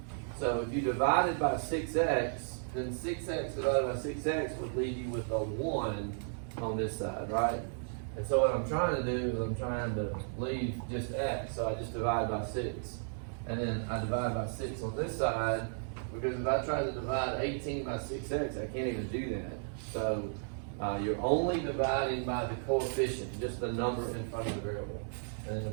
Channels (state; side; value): silent; left; digital silence